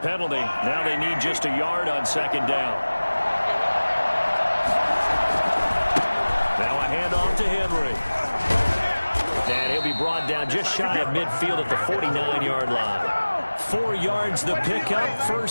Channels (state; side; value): inverted; both; correlation -1.00